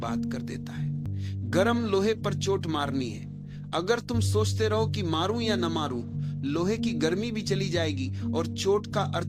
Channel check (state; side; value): identical; both; correlation 1.00